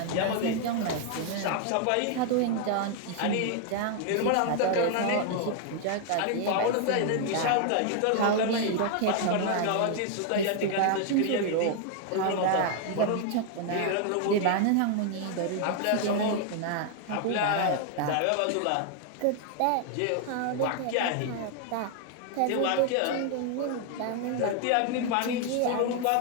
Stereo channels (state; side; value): different; both; correlation 0.00